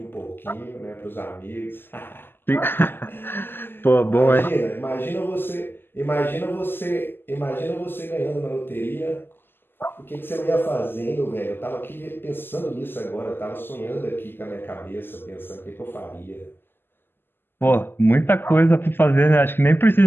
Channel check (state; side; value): late; right; 0.10 ms